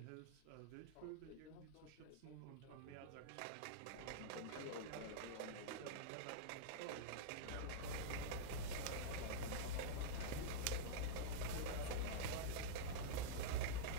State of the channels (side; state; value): both; different; correlation -0.03